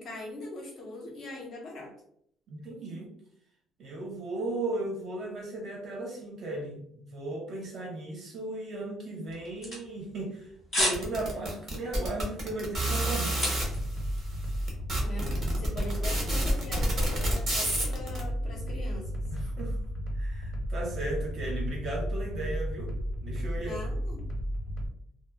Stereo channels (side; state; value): both; normal; correlation 0.77